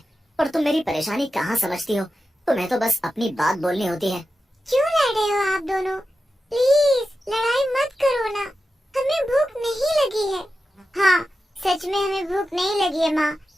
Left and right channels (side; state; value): both; normal; correlation 0.91